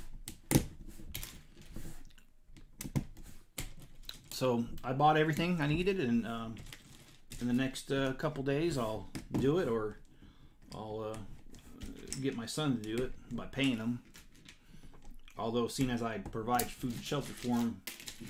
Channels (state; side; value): identical; both; correlation 1.00